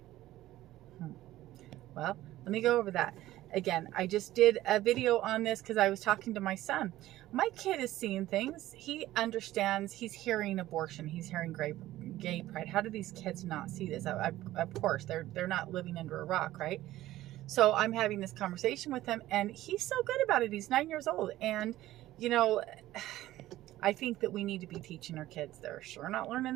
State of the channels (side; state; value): left; quieter; 15.2 dB